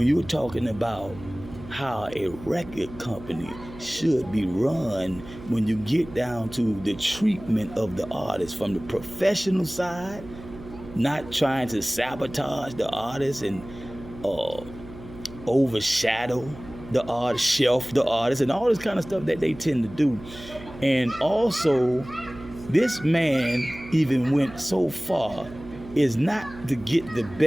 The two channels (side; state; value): right; noise; hum, 16 dB below the sound